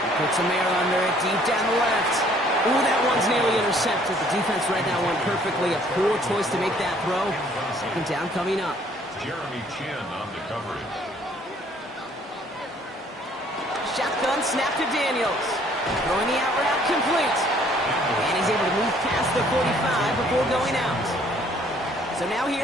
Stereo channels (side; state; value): both; normal; correlation 0.60